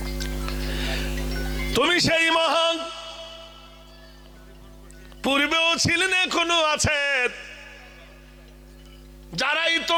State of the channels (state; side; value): identical; both; correlation 1.00